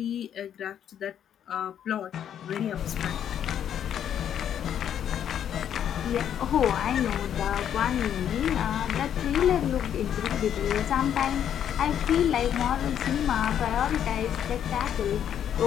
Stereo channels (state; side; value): quieter; right; 9.6 dB